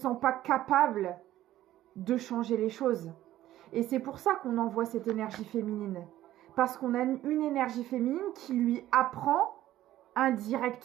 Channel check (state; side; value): quieter; left; 13.9 dB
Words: pas capable de changer les choses. Et c'est pour ça qu'on envoie cette énergie féminine. Parce qu'on a une énergie féminine qui lui apprend